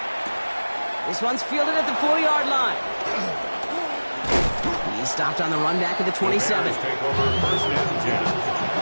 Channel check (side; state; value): both; inverted; correlation -1.00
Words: This one's fielded at the 4-yard line. He's stopped on the run back of the 27. Take over 1st and 10.